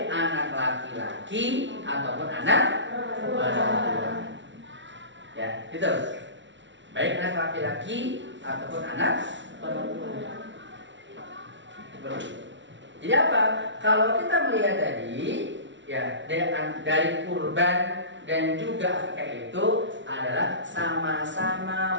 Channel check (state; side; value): late; left; 0.54 ms